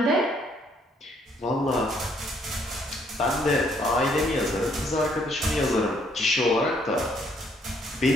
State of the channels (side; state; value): both; normal; correlation 0.67